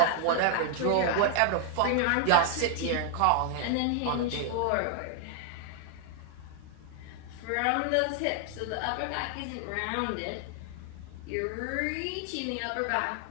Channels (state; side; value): different; both; correlation 0.00